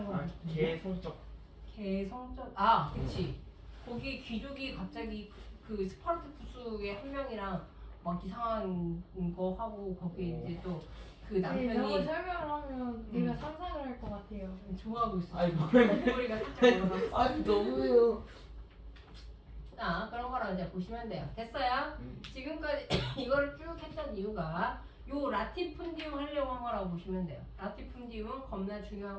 건 개성적. 개성적. 그치. 거기 귀족이 갑자기 그 스파르타쿠스의 한 명이랑 막 이상한 거 하고 거기 이제 또 그 네, 저거 남편이 설명을 하면 내가 상상을 할 것 같아요. 좋아하고 있어. 아니 뭐래? 머리가 살짝 올라가. 아니 너무해요. 자, 그런 거랑 이제 보시면 돼요. 됐어요? 지금까지 이거를 쭉 했던 이유가 요 라티푼디움 하려고 한 거라고 보시면 돼요. 라티푼디움 겁나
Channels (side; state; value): both; identical; correlation 1.00